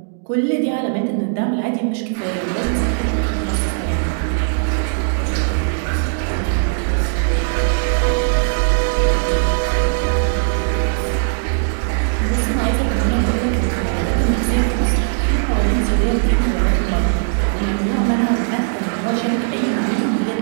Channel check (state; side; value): silent; left; digital silence